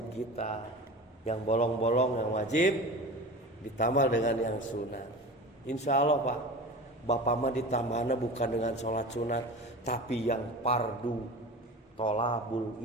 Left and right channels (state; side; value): normal; both; correlation 0.33